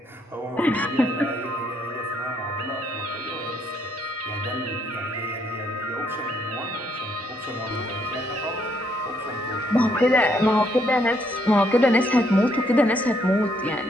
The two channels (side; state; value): both; normal; correlation 0.71